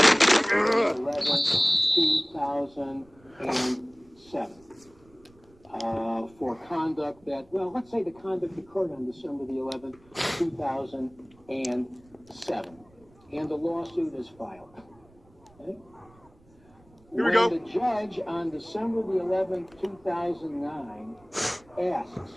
11th, 2007. For conduct that, well, let's say the conduct occurred on December the 11th, 2007. And the lawsuit is filed. Okay? Here we go. The judge on December the 11th, 2009 asks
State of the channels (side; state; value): right; noise; rumble, 29 dB below the sound